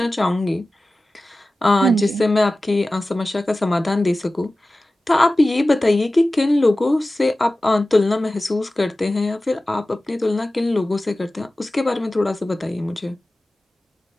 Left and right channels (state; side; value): normal; both; correlation 0.96